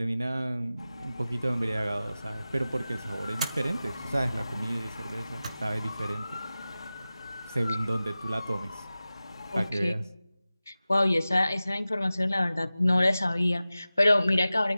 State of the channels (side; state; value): both; inverted; correlation -0.95